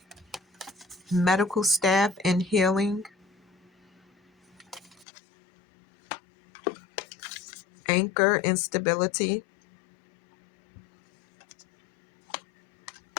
Medical staff and healing. Anchor and stability.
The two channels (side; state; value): right; drops out; at 5.1 s